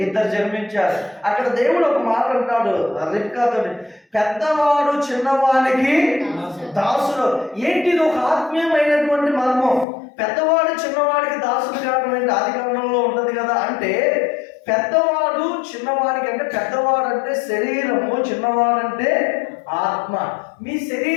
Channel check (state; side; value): drops out; right; at 9.9 s